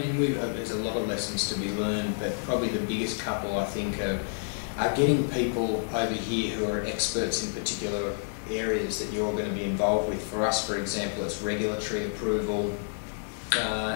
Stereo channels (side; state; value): right; silent; digital silence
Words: there's a lot of lessons to be learned, but probably the biggest couple, I think, are getting people over here who are experts in particular areas that you're going to be involved with. For us, for example, it's regulatory approval